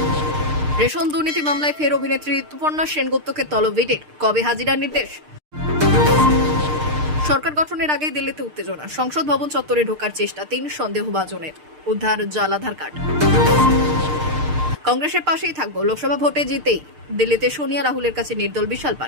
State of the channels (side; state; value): left; late; 6.6 ms